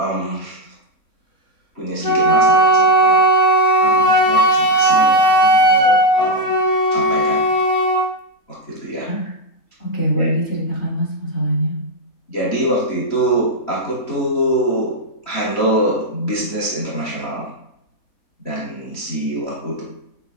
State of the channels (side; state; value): right; late; 3.6 ms